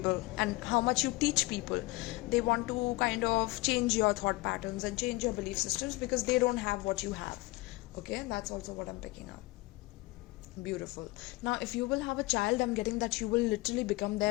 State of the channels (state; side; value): quieter; right; 21.8 dB